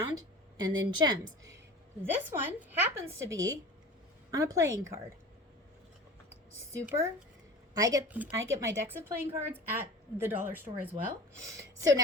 and then gems. This one happens to be on a playing card. Super. I get my decks of playing cards at the dollar store as well. So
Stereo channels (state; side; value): normal; both; correlation 0.38